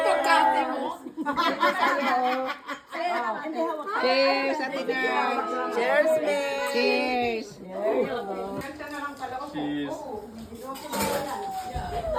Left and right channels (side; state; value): both; identical; correlation 1.00